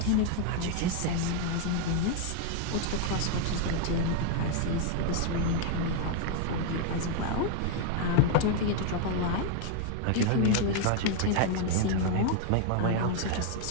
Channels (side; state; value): both; different; correlation 0.00